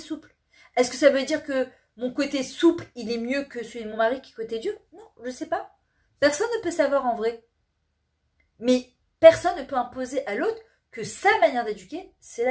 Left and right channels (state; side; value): identical; both; correlation 1.00